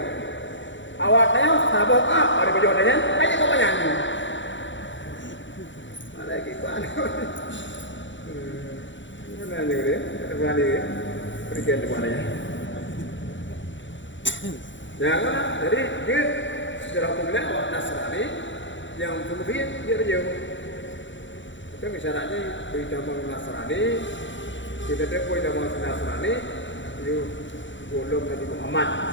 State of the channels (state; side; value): late; right; 0.54 ms